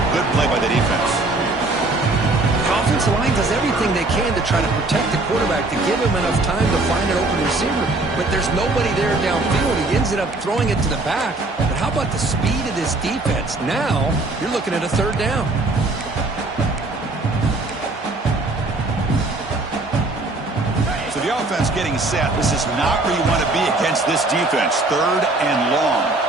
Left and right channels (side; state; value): left; quieter; 3.0 dB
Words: good play by the defense. The offensive line does everything they can to try to protect the quarterback, to give him enough time to find an open receiver. But there's nobody there downfield. He ends up throwing it to the back. But how about the speed of this defense? Now you're looking at a third down. So the offense getting set. This is not where you want to be against this defense. Third and long.